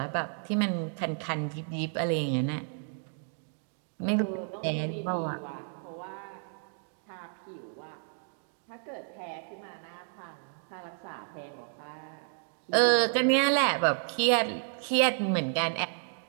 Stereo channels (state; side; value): silent; left; 57 dB below the other